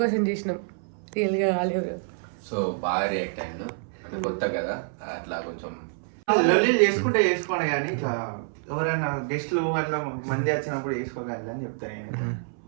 కోసం చేసినాం, రియల్గా కాలే బ్రో. సో బాగా రియాక్ట్ అయ్యాను, అంటే కొత్త కదా అట్లా కొంచెం లొల్లీలు చేసుకుంటే చేసుకోండి, కానీ ఇట్లా ఎవరైనా గెస్ట్లు అట్లా మంది వచ్చినప్పుడు వేసుకోగలరు అని చెప్తాను.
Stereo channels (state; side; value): silent; left; 60 dB below the other